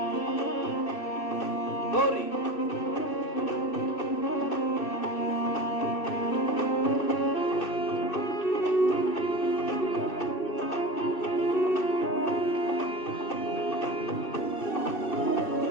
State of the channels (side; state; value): right; late; 2.6 ms